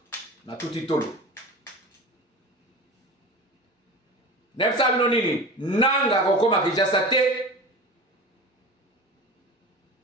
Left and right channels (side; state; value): both; normal; correlation 0.33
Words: Na tuti tolo. Nepsa bino nini? Nanga kokoma Kinshasa te.